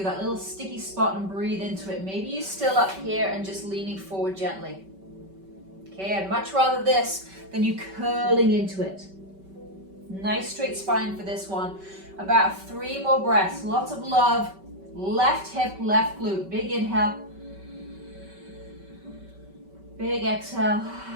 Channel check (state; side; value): late; left; 5.2 ms